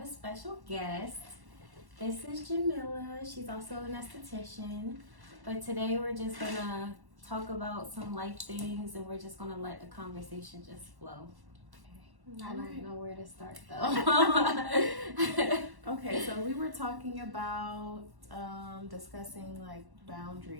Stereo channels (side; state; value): left; late; 1.1 ms